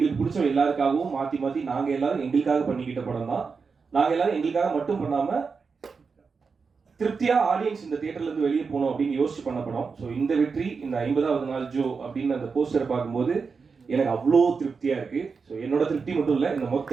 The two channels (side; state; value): left; quieter; 5.1 dB